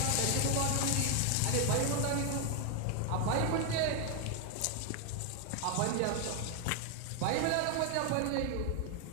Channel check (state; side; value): different; both; correlation 0.01